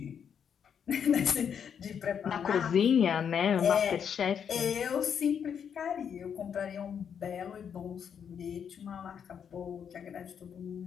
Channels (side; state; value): right; quieter; 7.7 dB